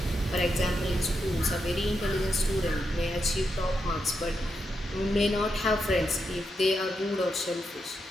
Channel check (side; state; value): both; normal; correlation 0.84